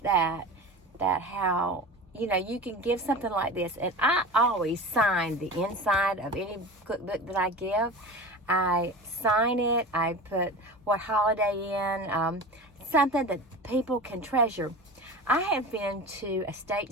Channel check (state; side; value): normal; both; correlation 0.32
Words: that how, you can give something like this. And I always sign the inside of any cookbook that I give. I sign it. I put what holiday in, something that people can treasure. I have been to estate